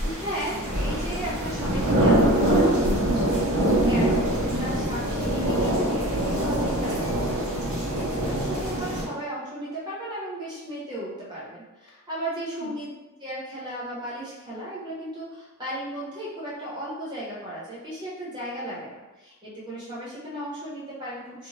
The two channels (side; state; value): both; normal; correlation 0.37